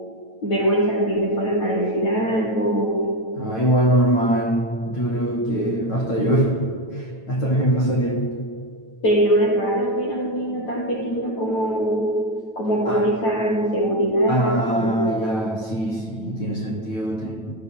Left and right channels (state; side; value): late; right; 9.1 ms